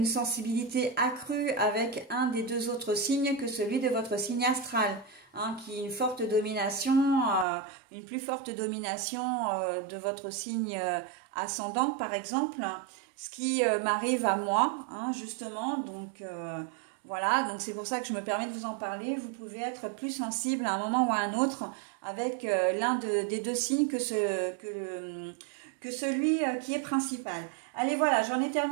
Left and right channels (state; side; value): drops out; left; at 7.5 s